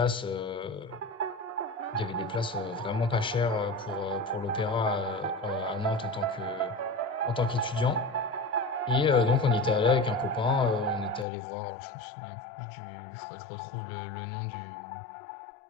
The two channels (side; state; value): right; drops out; at 11.2 s